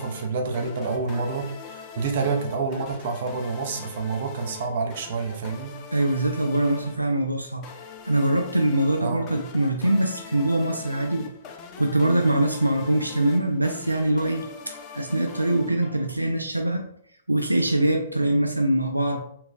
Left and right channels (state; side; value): inverted; both; correlation -0.81